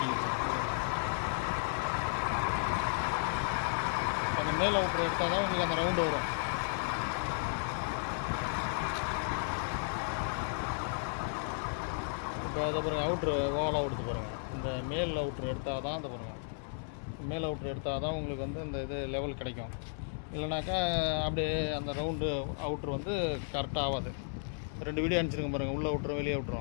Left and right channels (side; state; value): right; silent; 55 dB below the other